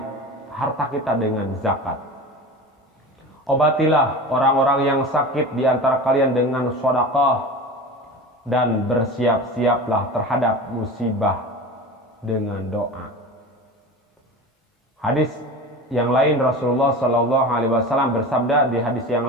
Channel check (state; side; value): normal; both; correlation 0.32